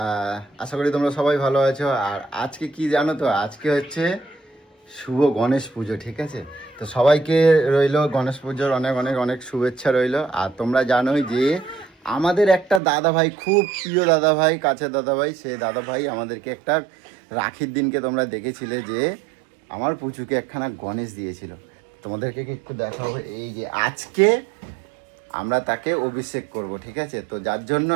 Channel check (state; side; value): drops out; left; at 12.8 s